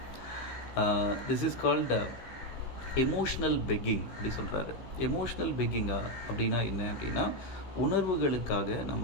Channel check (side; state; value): right; late; 15 ms